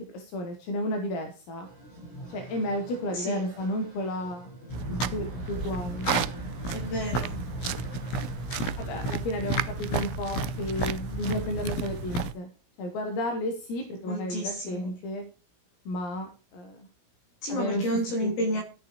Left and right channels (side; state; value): right; late; 17 ms